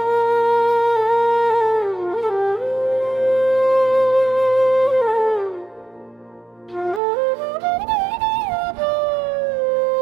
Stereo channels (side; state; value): left; drops out; at 7.0 s